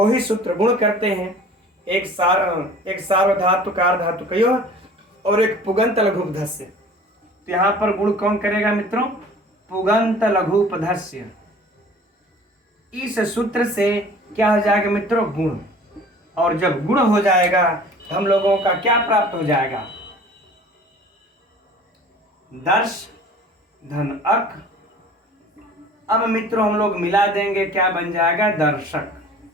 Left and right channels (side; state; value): both; normal; correlation 0.46